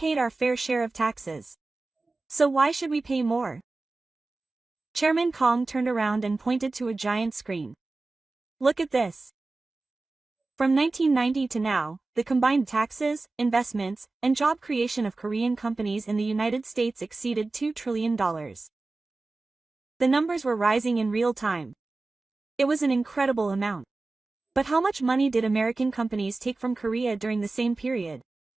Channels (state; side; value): quieter; left; 3.4 dB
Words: our fair share of taxes. So why should we pay more? Chairman Kong turned around and pointed to a giant screen. Look at this. From 1990 to now, the combined taxes, investments, and job creation of Korean companies in the United States exceeded $2 trillion. The numbers were rising in real time. It was an incredible amount. But how much money did American companies take from Korea during the same period?